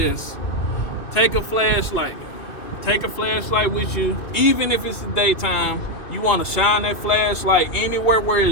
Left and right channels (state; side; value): late; right; 2.6 ms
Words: take a flashlight with you, even if it's the daytime. You want to shine that flashlight anywhere where